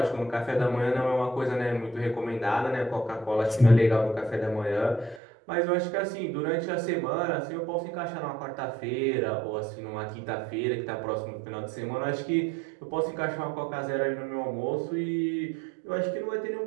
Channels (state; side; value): drops out; left; at 5.2 s